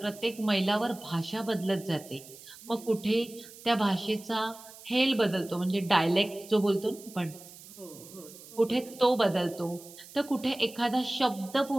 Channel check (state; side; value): noise; right; hiss, 18 dB below the sound